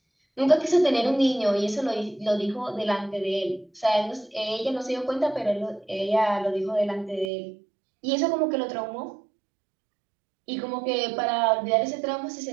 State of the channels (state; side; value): drops out; left; at 7.3 s